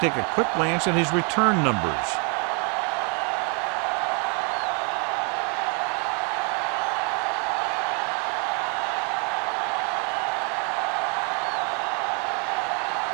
a quick glance at his return numbers.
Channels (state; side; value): quieter; left; 35.4 dB